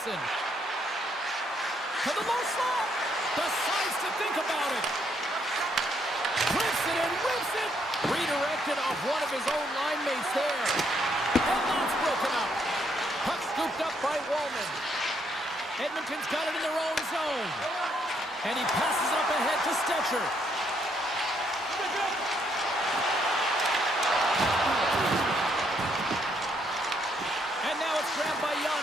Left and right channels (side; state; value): both; normal; correlation 0.73